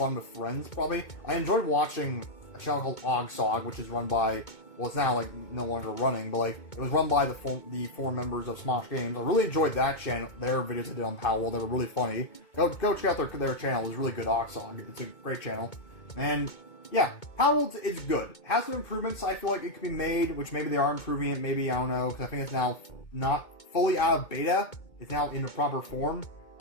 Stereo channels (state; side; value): late; right; 2.2 ms